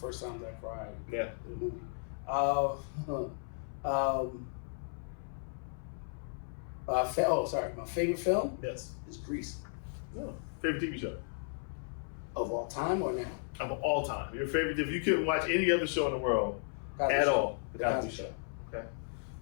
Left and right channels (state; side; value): silent; right; 54 dB below the other